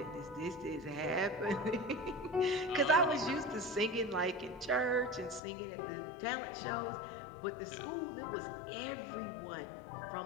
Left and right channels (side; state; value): right; drops out; at 5.4 s